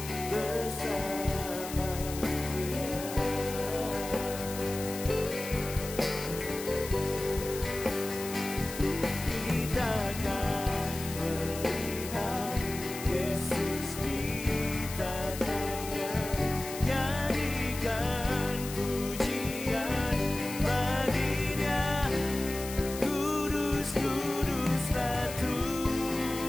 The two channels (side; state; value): left; noise; hiss, 10 dB below the sound